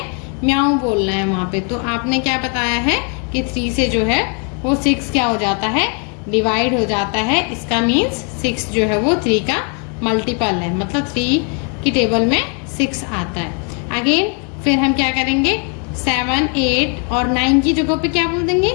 म्याऊ बोलना है वहां पे। तो आपने क्या बताया है कि 3 से जो है वो 6 क्या हो जाता है, डिवाइड हो जाता है। इसका मीन्स 6 जो है वो 3 का मल्टीपल है, मतलब 3 की टेबल में 6 आता है। अगेन फिर हम क्या करेंगे, 7 8 और 9 की जगह पे क्या बोल देंगे,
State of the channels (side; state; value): right; quieter; 38.9 dB